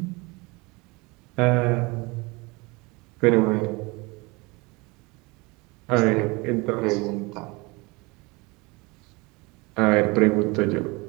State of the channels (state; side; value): quieter; left; 25.9 dB